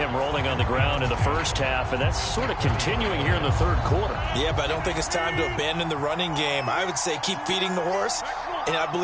rolling on the ground in the first half, and that's sort of continuing here in the third quarter. Yeah, but I don't think it's time to abandon the running game. I would say keep feeding the horse, and I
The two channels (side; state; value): both; identical; correlation 1.00